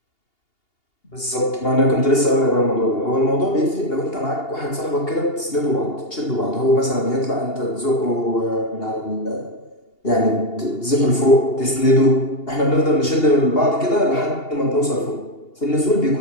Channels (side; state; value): right; late; 2.8 ms